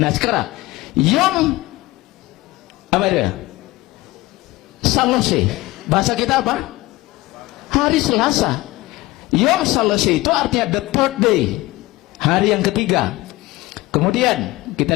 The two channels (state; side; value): quieter; right; 19.7 dB